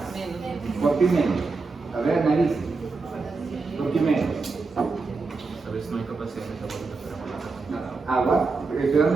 ¿Por qué menos? A ver, analice. ¿Por qué menos? A veces no hay capacidad de metabolismo para Agua, estoy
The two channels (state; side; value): quieter; left; 4.1 dB